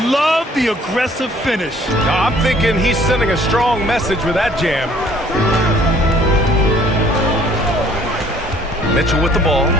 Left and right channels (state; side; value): normal; both; correlation 0.57